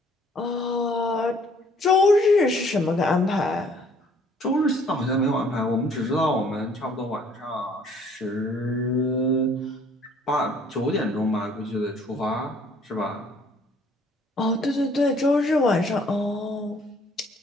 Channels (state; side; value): normal; both; correlation 0.59